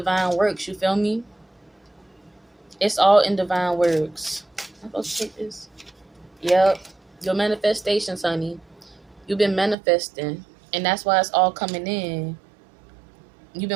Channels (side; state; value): left; drops out; at 9.8 s